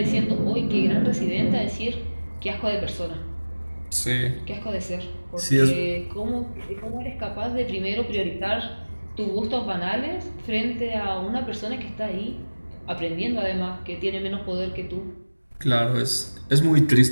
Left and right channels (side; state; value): both; inverted; correlation -1.00